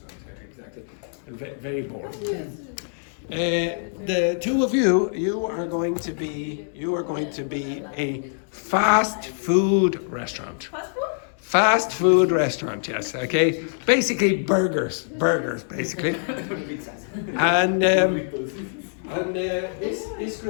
exactly. Very boring. The two of you, you are going to be a fast food restaurant. Fast food? Fast food restaurant, yes, okay. Basically burgers, basically. And this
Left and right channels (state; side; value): silent; right; digital silence